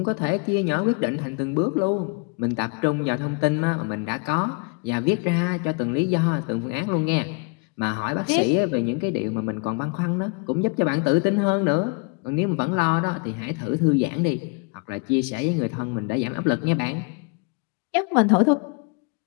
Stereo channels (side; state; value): right; quieter; 33.0 dB